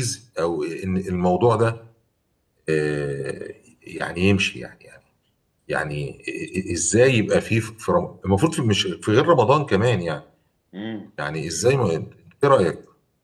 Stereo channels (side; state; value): both; identical; correlation 1.00